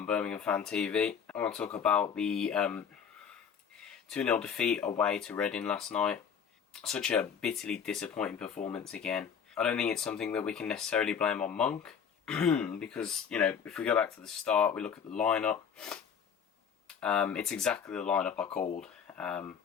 Birmingham Fan TV. I want to talk about the 2-0 defeat away to Reading last night. Such a bitterly disappointing performance again. I don't think it's something that we can necessarily blame on Monk because, if we go back to the start, we look at the lineup. It's exactly the lineup I called.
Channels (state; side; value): quieter; right; 7.3 dB